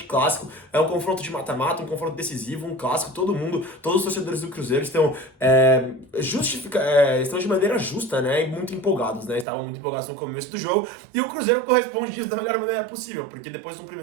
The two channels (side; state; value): left; drops out; at 9.5 s